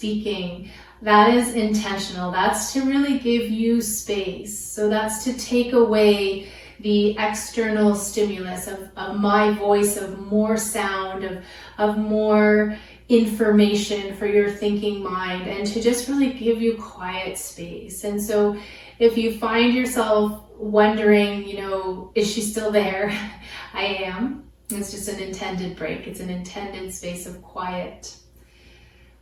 That is intentional. That's to really give you space. So that's to take away the external stimulus of my voice, of more sound, of more information for your thinking mind, and to just really give you quiet space. And so if you find yourself wondering, is she still there? I am. It's just an intended break. It's an intended space of quiet.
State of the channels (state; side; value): identical; both; correlation 1.00